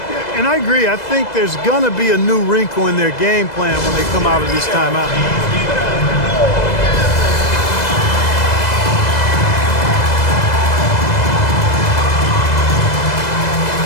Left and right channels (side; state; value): right; late; 2.0 ms